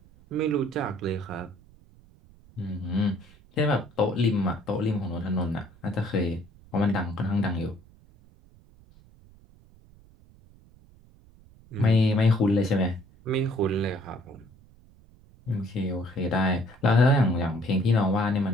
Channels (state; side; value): noise; right; rumble, 26 dB below the sound